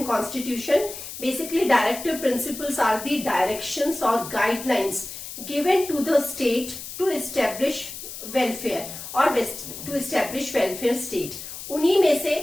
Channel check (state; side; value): noise; left; hiss, 10 dB below the sound